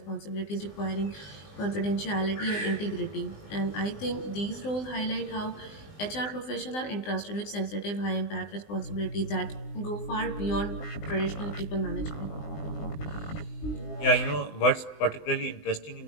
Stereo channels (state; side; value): late; right; 20 ms